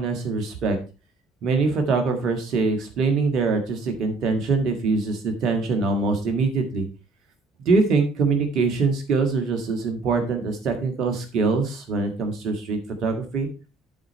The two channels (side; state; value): left; quieter; 3.7 dB